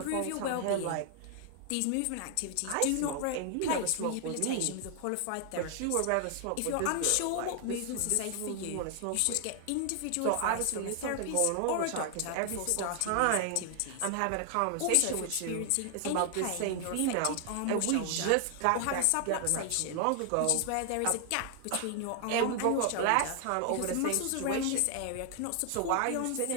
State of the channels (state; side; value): different; both; correlation 0.00